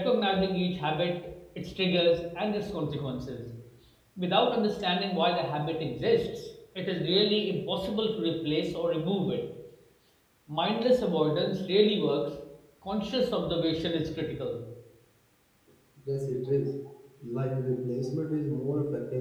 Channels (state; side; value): identical; both; correlation 1.00